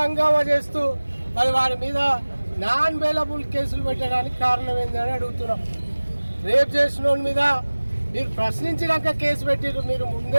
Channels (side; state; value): both; inverted; correlation -1.00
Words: హంగామా చేస్తూ మరి వారి మీద నాన్ బెయిలబుల్ కేసులు పెట్టడానికి కారణం ఏందని అడుగుతున్నాం. రేప్ చేసిన వాళ్ళ మీద మీరు ప్రశ్నించినాక కేసు పెట్టిరు, మీరు